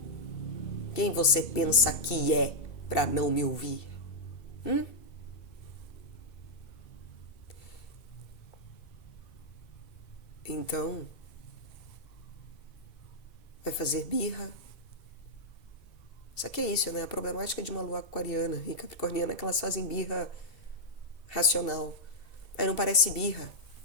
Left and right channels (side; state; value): right; late; 2.7 ms